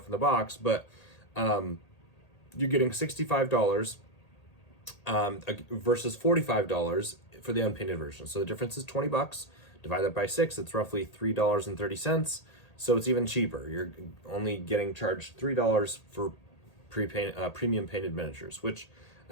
in the box, but you're getting $65 versus $45 for the unpainted version. So the difference is $20. Divide that by 6, it's roughly $3.30. So it's even cheaper. You're only getting charged $3 for premium painted miniatures, which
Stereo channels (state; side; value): late; right; 1.8 ms